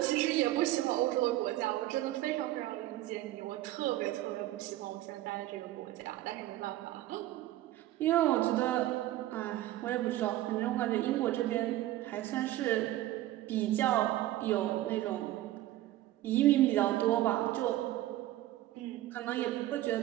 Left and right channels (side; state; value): left; quieter; 15.1 dB